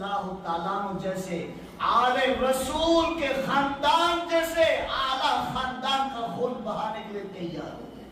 تعالیٰ عنہ جیسے آل رسول کے خاندان جیسے اعلیٰ خاندان کا خون بہانے کے لیے تیار ہو گئے۔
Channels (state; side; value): identical; both; correlation 1.00